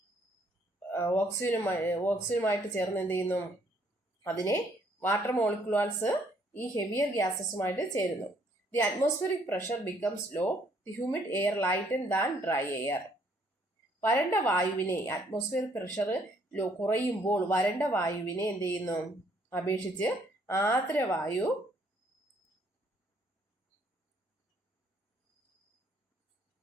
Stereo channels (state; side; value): normal; both; correlation 0.66